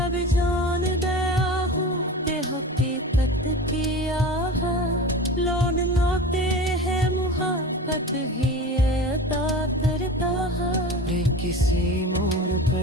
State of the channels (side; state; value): both; normal; correlation 0.33